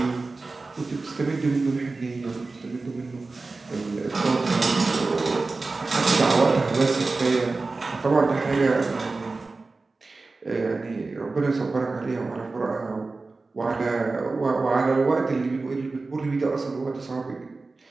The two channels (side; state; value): left; quieter; 3.7 dB